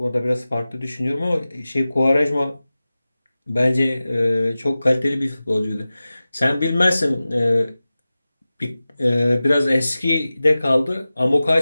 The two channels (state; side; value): inverted; both; correlation -0.96